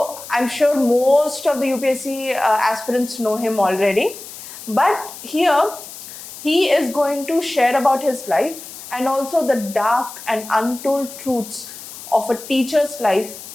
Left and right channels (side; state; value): left; noise; hiss, 14 dB below the sound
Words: I'm sure most of the UPSC aspirants know him already. But here, he is going to share about his life and also the dark and untold truths of a teacher's life